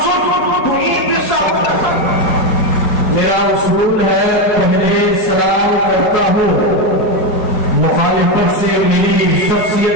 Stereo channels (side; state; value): right; late; 4.7 ms